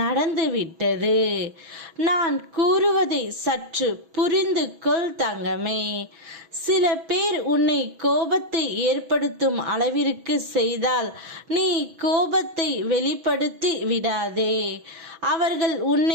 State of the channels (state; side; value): late; left; 6.1 ms